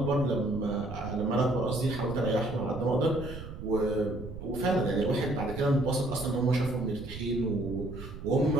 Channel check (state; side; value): noise; right; rumble, 11 dB below the sound